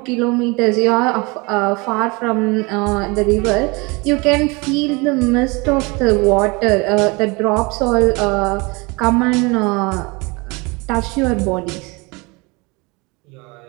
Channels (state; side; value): quieter; left; 27.0 dB